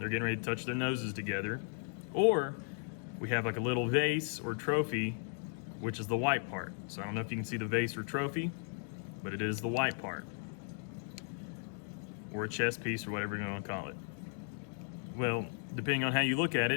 getting ready to touch their noses together. Or we have like a little vase or trophy, which is the white part. So I don't know if you can see the vase or trophy, but it is the white part. Or a chess piece or whatever you want to call it. Well, depending on how you look at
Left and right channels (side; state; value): right; silent; 54 dB below the other